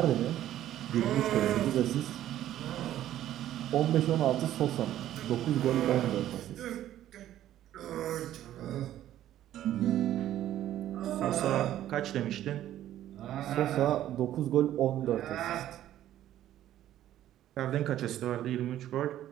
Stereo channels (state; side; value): quieter; left; 12.5 dB